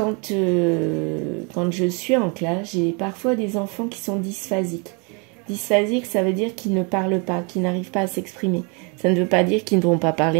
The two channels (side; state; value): left; quieter; 33.4 dB